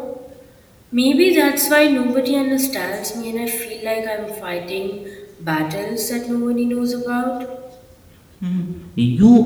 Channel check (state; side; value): identical; both; correlation 1.00